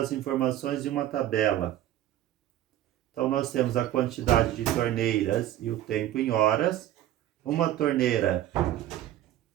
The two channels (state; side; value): quieter; left; 12.9 dB